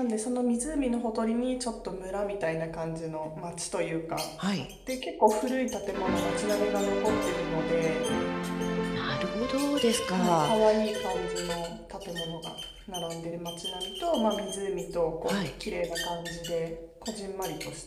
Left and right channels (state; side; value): identical; both; correlation 1.00